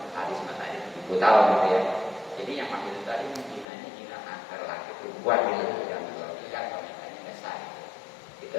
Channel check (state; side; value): drops out; right; at 3.7 s